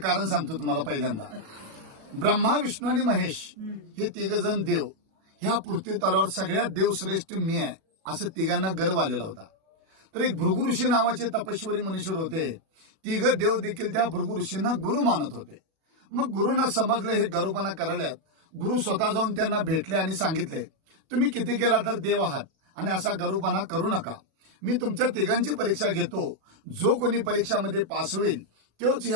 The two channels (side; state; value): left; late; 37 ms